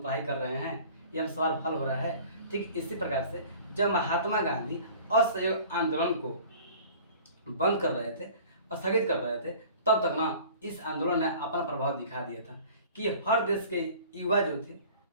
पढ़ाई कर रहे हैं, ये हम सवाल हल हो रहा है। ठीक इसी प्रकार से जब महात्मा गांधी असहयोग आंदोलन को बंद कर रहे थे, स्थगित कर रहे थे, तब तक ना इस आंदोलन ने अपना प्रभाव दिखा दिया था कि हर देश के युवा जो थे,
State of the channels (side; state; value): both; inverted; correlation -0.46